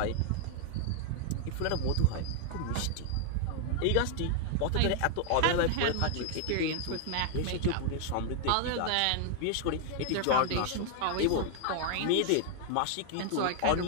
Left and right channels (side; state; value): both; different; correlation 0.00